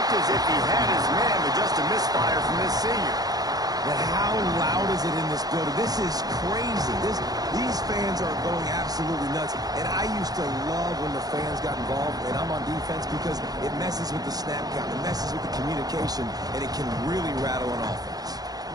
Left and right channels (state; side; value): late; left; 0.19 ms